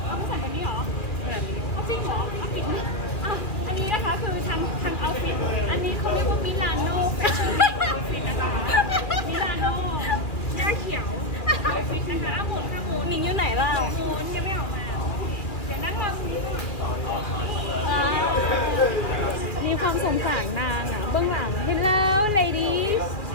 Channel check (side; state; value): right; late; 2.5 ms